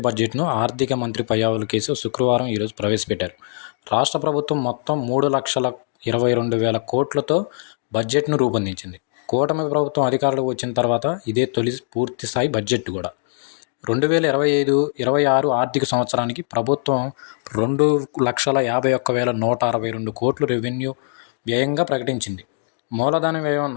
బడ్జెట్ను ఆర్థిక మంత్రి పయ్యావుల కేశవ్ శుక్రవారం ప్రవేశపెట్టారు. రాష్ట్ర ప్రభుత్వం మొత్తం 3,22,000 కోట్లతో బడ్జెట్ను రూపొందించింది. కూటమి ప్రభుత్వం అధికారంలోకి వచ్చిన తర్వాత ఇదే తొలి పూర్తిస్థాయి బడ్జెట్ కూడా. 2025-26 ఆర్థిక సంవత్సరానికి ప్రభుత్వం 2,51,162 కోట్లు రెవెన్యూ వ్యయంగా ప్రకటించింది. మూలధన వ్యయం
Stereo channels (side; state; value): right; silent; digital silence